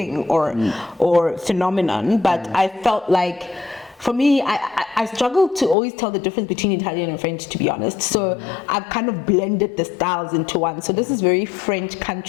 or phenomenon. But I felt like, for me, I struggle to always tell the difference between Italian and French, to be honest. So I've kind of blended the styles into one. So this is very French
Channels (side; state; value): right; drops out; at 5.8 s